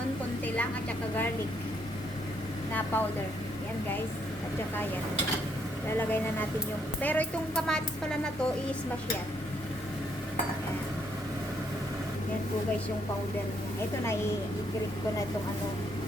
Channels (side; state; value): both; normal; correlation 0.73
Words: konti lang, at saka garlic na powder. Yan guys. At saka yan. Lalagay na natin yung... Pero itong kamatis pala na to, i-smash yan. Yan. Yan po guys yung powder niya. Ito na, i-grate ko na itong